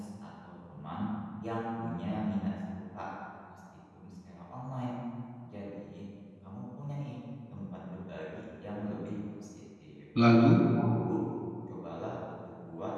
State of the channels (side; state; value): both; identical; correlation 1.00